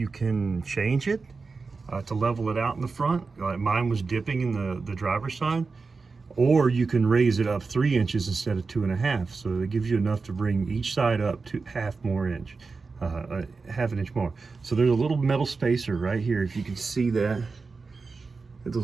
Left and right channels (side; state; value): left; quieter; 4.4 dB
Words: can change it to level it out in the front. Mine was dipping in the driver's side. Or you can raise it up 3 inches instead of 2.5. So it gives you enough to bring each side up to half an inch more. So there's a little metal spacer right here. If you can see that,